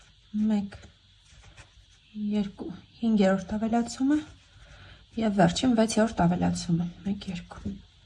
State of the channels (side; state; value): both; identical; correlation 1.00